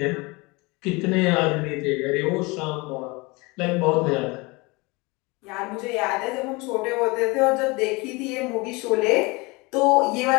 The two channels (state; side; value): quieter; right; 25.6 dB